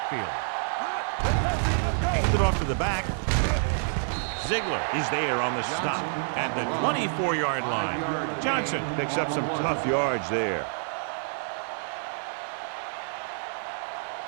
Handed off to the back. Ziegler is there on the stop at the 24-yard line. Johnson picks up some tough yards there.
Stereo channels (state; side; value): silent; left; digital silence